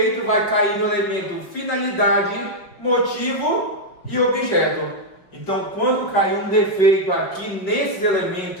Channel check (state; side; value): late; right; 5.1 ms